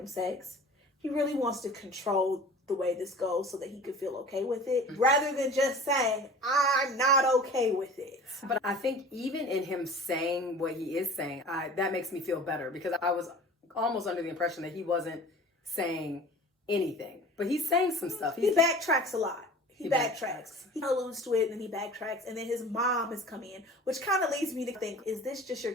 sex. He really wants to control the way this goes so that he could feel okay with it rather than just saying, I'm not okay with it. But I think even in him saying what he is saying, that makes me feel better because I was almost under the impression that he wasn't saying anything. But he's saying some stuff. He backtracks a lot. He backtracks. He alludes to it and then he backtracks. And then his mom has come in, which kind of leads me to think, is this just your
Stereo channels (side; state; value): both; normal; correlation 0.42